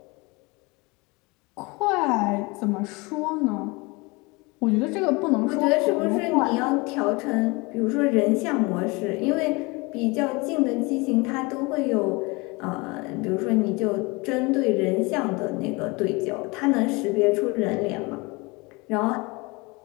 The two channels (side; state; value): right; quieter; 26.0 dB